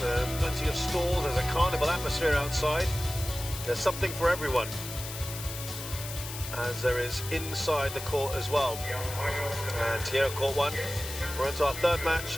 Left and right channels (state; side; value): noise; left; hiss, 9 dB below the sound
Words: Plenty of stalls. There's a carnival atmosphere outside. There's something for everyone. as there is inside the court as well. And here at court 1, we're into our third match